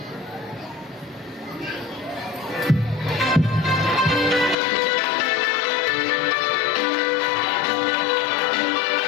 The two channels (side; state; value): right; drops out; at 4.5 s